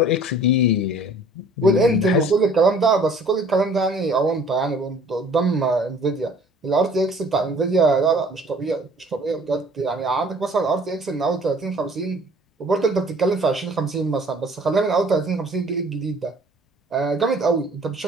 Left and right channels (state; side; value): normal; both; correlation 0.53